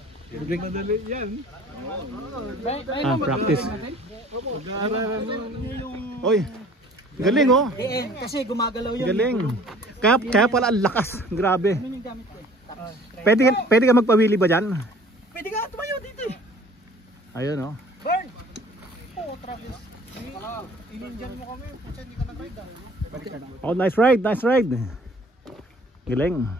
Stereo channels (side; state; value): both; normal; correlation 0.51